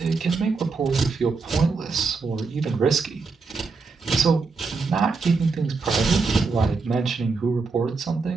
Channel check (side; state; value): left; quieter; 4.4 dB